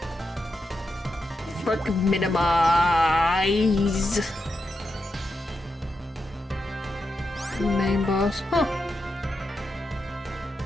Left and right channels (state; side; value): normal; both; correlation 0.87